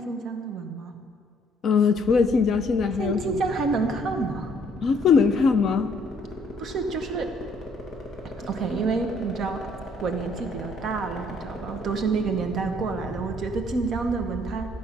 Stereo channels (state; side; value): normal; both; correlation 0.64